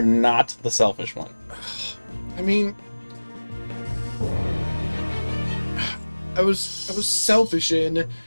not the selfish one. I mean, I was selfish in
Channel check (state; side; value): inverted; both; correlation -1.00